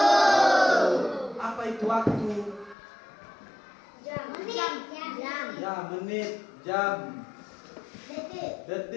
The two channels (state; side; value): drops out; right; at 2.8 s